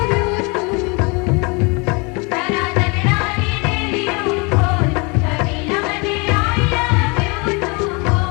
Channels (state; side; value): quieter; right; 29.5 dB